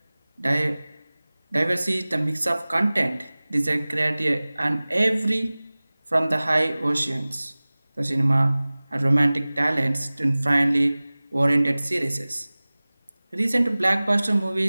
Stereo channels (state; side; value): inverted; both; correlation -0.99